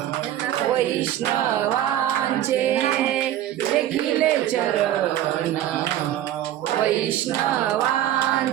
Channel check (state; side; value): quieter; left; 12.3 dB